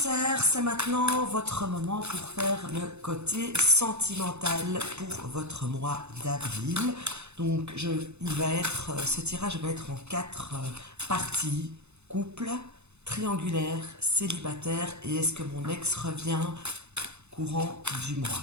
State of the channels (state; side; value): late; left; 0.81 ms